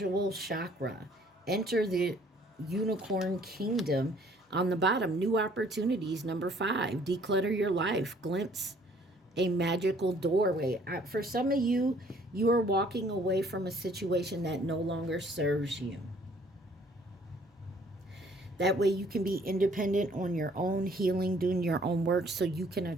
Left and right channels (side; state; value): both; normal; correlation 0.59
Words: chakra. Enter the unicorn kingdom. On the bottom, new opportunities. Number 5, declutter your life. Glimpse a magical doorway. For some of you, you are walking away from a situation that no longer serves you. That way you can be independent on your own, healing, doing your own work, so you can